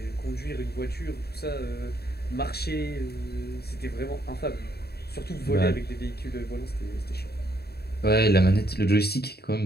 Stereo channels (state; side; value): late; right; 0.46 ms